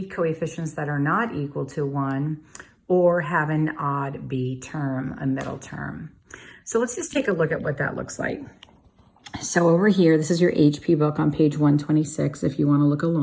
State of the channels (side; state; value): both; identical; correlation 1.00